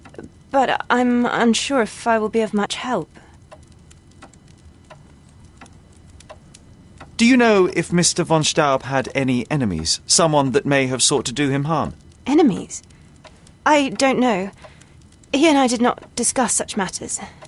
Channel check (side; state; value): both; identical; correlation 1.00